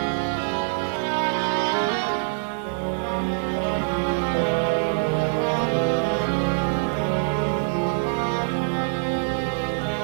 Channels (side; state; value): left; silent; digital silence